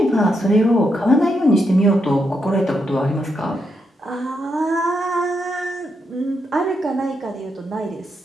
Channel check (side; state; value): both; normal; correlation 0.81